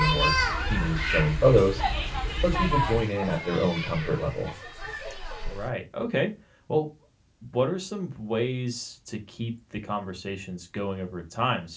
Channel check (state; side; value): identical; both; correlation 1.00